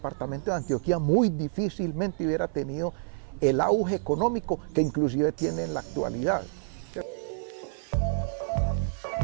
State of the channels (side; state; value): left; silent; 56 dB below the other